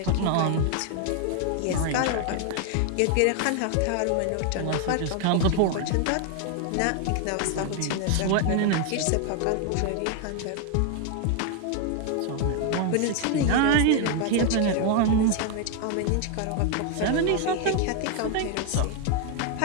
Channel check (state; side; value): different; both; correlation 0.01